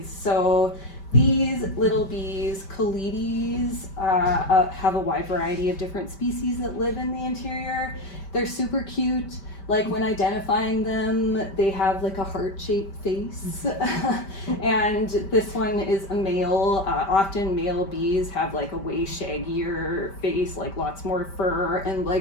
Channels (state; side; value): late; right; 5.1 ms